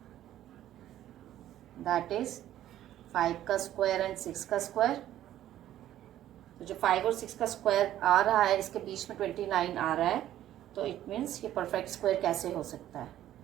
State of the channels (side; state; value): left; quieter; 12.6 dB